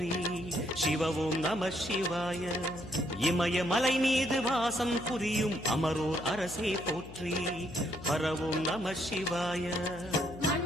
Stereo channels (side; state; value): left; noise; hum, 15 dB below the sound